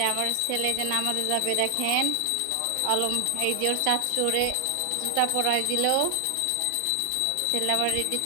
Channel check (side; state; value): both; different; correlation 0.00